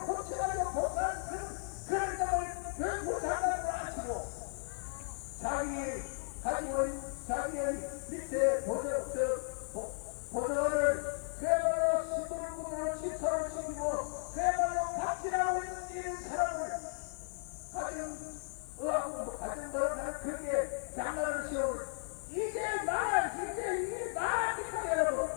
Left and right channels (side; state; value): right; silent; 54 dB below the other